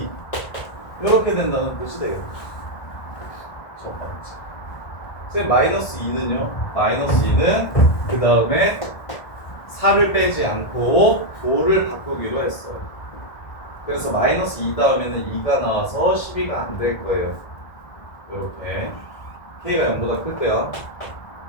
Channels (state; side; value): late; right; 1.4 ms